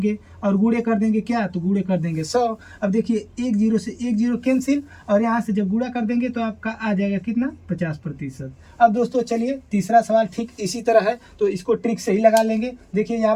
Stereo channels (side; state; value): both; identical; correlation 1.00